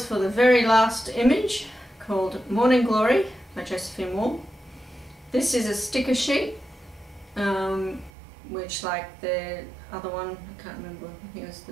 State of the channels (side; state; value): left; drops out; at 8.1 s